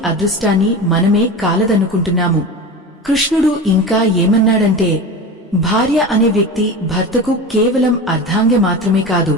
అదృష్టాన్ని మనమే కాలదన్నుకుంటున్నాము. కృష్ణుడు ఇంకా ఏమన్నాడంటే, భార్య అనే వ్యక్తి భర్తకు కేవలం అర్ధాంగ మాత్రమే కాదు,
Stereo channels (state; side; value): normal; both; correlation 0.28